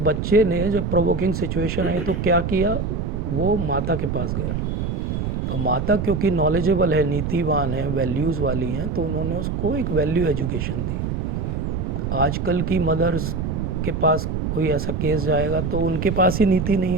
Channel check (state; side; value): noise; right; rumble, 2 dB below the sound